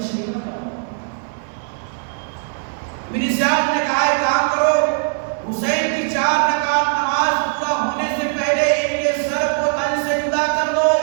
شہید نہ کرو۔ ابن زیاد نے کہا ایک کام کرو، حسین کی 4 رکعت نماز پورا ہونے سے پہلے ان کے سر کو تن سے جدا کر دو۔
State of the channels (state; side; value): silent; left; digital silence